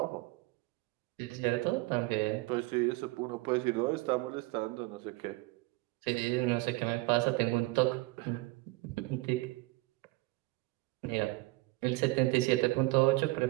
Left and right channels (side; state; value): left; quieter; 22.1 dB